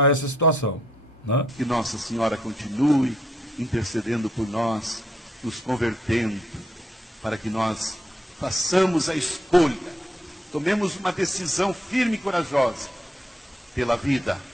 essa situação. Né? Que Nossa Senhora continue intercedendo por nós, nos convertendo, para que nós façamos a escolha, tomemos uma decisão firme e corajosa pela vida,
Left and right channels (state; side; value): normal; both; correlation 0.74